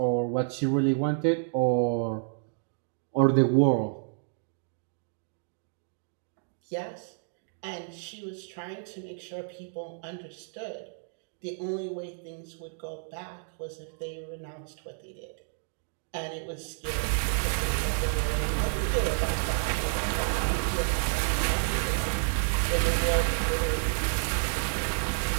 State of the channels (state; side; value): silent; left; digital silence